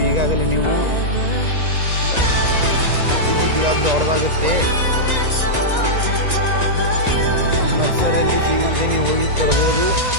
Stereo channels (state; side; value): late; left; 1.9 ms